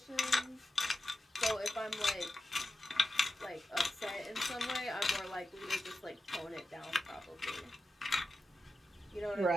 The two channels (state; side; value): normal; both; correlation 0.91